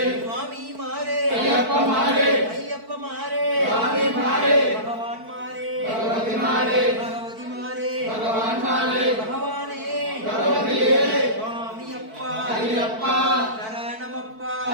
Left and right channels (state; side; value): late; left; 4.5 ms